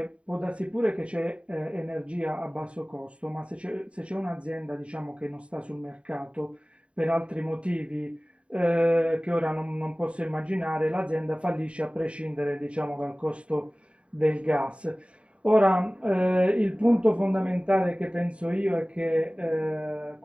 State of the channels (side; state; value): left; late; 0.061 ms